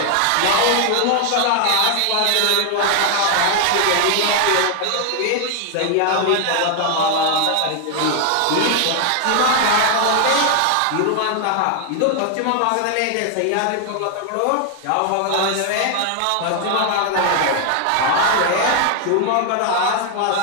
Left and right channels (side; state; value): both; different; correlation 0.00